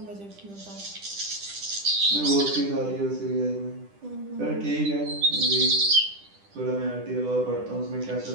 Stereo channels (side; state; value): left; late; 10 ms